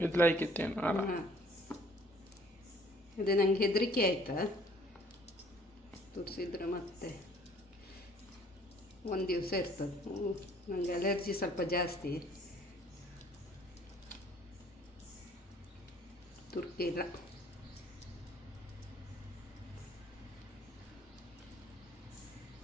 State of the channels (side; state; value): both; normal; correlation 0.57